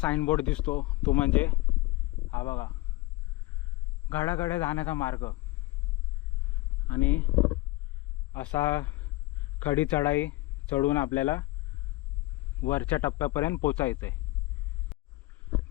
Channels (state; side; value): quieter; right; 19.9 dB